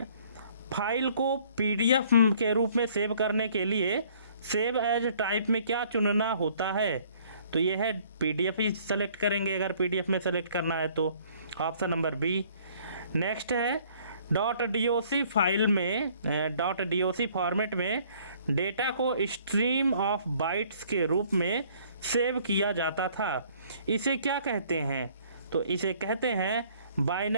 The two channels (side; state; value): both; inverted; correlation -0.59